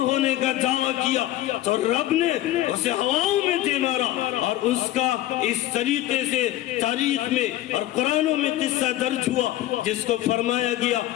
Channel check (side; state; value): right; quieter; 14.7 dB